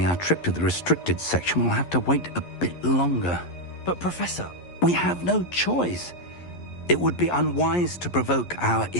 our trip to the restricted section will have to wait a bit longer. But, Professor... We have no choice. It would be unwise to provoke our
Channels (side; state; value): right; late; 11 ms